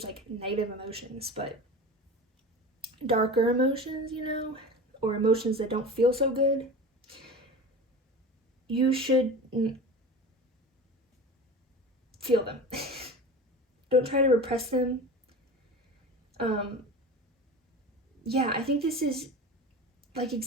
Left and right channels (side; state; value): both; normal; correlation 0.32